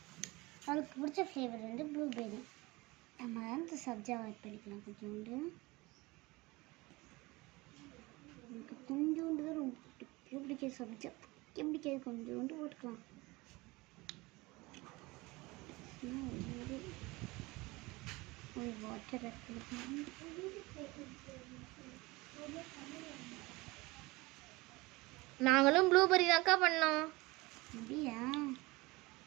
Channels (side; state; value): left; quieter; 22.6 dB